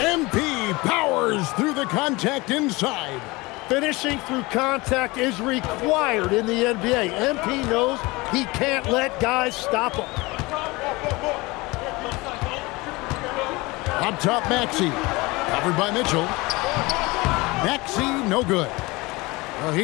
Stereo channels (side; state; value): right; quieter; 23.1 dB